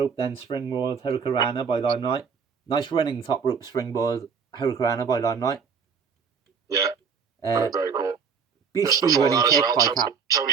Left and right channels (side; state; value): left; quieter; 6.1 dB